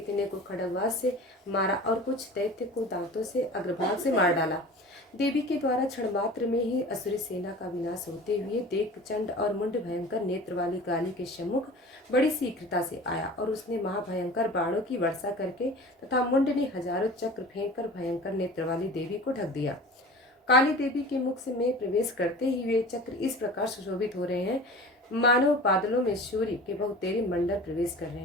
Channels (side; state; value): both; normal; correlation 0.39